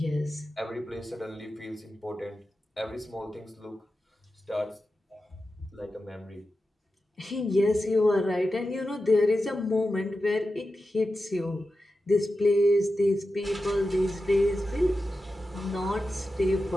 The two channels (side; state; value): both; normal; correlation 0.92